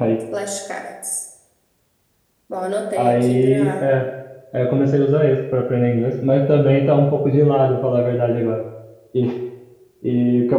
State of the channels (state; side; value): identical; both; correlation 1.00